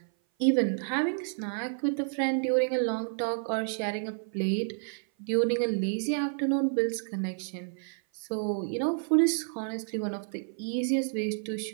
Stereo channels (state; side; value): silent; left; 56 dB below the other